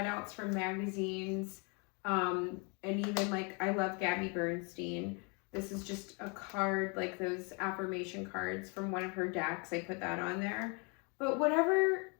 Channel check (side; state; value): right; quieter; 33.2 dB